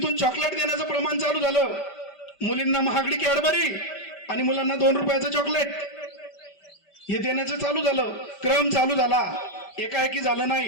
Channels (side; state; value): right; late; 5.1 ms